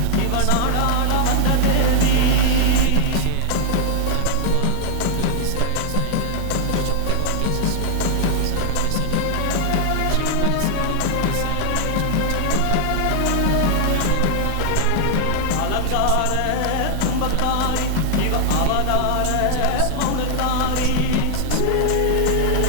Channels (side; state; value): both; different; correlation 0.00